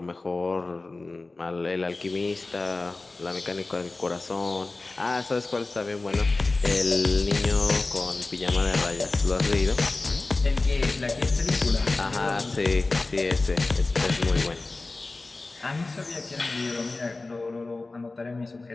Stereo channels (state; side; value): quieter; right; 3.3 dB